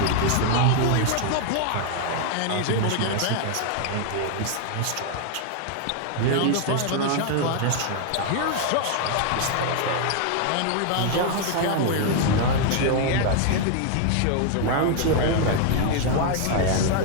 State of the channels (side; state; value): both; different; correlation 0.00